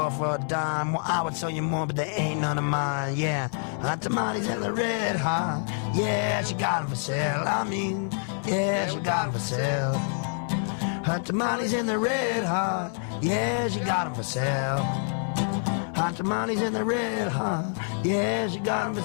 for a dime. Well, I would sell you more, but they ain't none of mine, yeah. Hot tamales in the red hot, yeah, she got 'em for sale. I mean, yeah, she got 'em for sale. Hot tamales in the red hot, yeah, she got 'em for sale. Hot tamales in the red hot, yeah, she got 'em for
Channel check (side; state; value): right; silent; 60 dB below the other